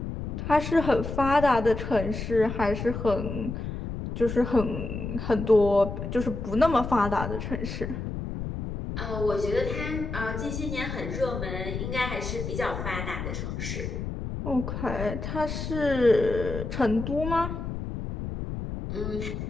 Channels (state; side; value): noise; left; rumble, 5 dB below the sound